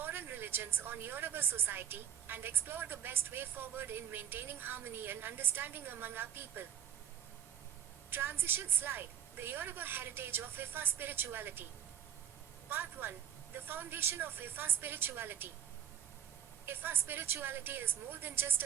religions on Yoruba society, and explore the best way forward in maintaining harmony and understanding among our people. Transition slide, the Yoruba heritage of Ifa spirituality. Part 1, the foundation of Ifa spirituality. Ifa spirituality is more than just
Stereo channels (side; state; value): left; quieter; 9.4 dB